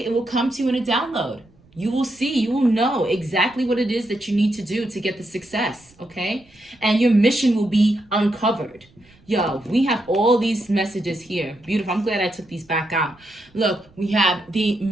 It will come to you in a download. You will see, you will know exactly what it is that you need to do to get the success. Okay? And your mission will be uncovered. Yo, we have all these messages here. Beautiful. I'm glad I took these back out. Look, we have the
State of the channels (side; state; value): right; noise; rumble, 30 dB below the sound